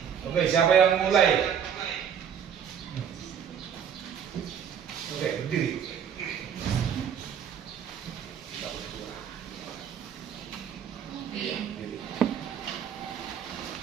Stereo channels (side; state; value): left; quieter; 8.2 dB